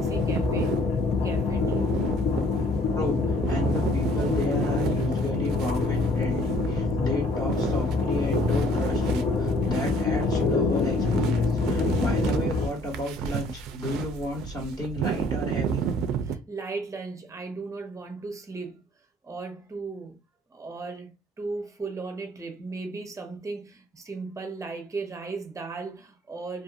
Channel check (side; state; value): both; normal; correlation 0.58